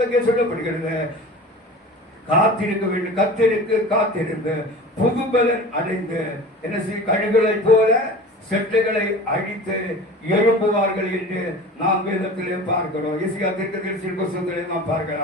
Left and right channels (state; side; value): normal; both; correlation 0.37